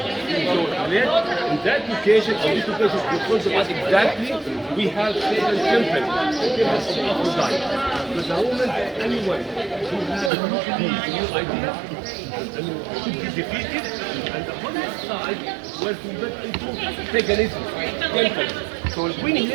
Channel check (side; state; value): left; drops out; at 10.3 s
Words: in that location, on this location, in front of us exactly, we have Satan's temple, the temple of Aphrodite. But the Romans, anyone who has a new idea, should be defeated, and the other side was converted into paganism, temple. So when